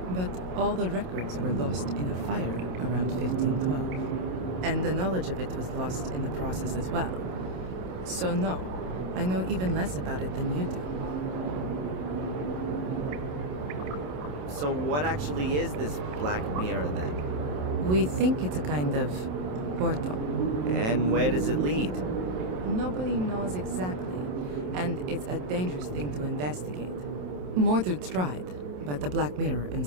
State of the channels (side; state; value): left; late; 27 ms